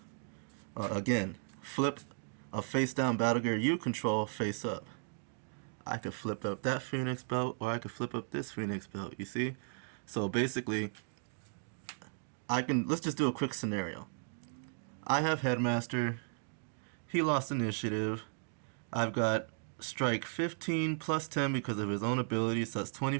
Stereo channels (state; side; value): silent; left; 54 dB below the other